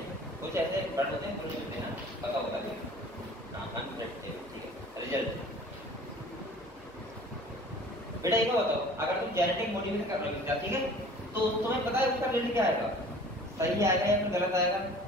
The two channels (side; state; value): left; noise; hum, 26 dB below the sound